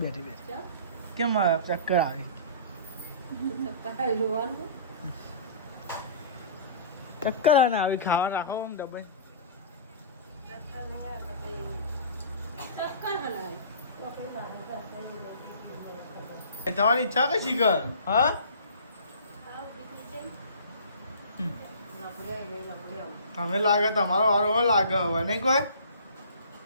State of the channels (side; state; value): both; inverted; correlation -0.44